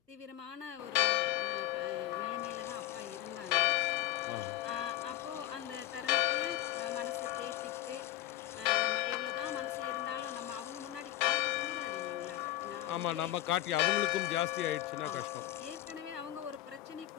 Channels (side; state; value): right; quieter; 14.8 dB